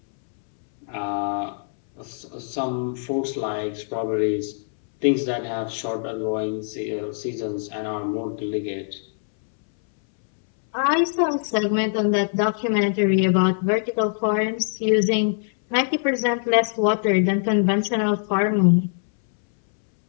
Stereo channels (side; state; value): right; silent; 63 dB below the other